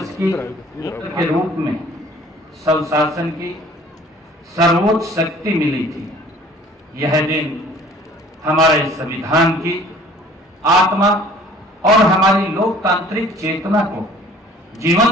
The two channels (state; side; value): normal; both; correlation 0.52